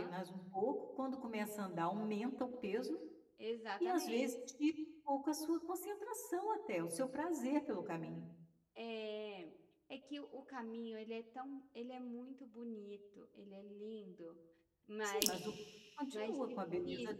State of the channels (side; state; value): both; identical; correlation 1.00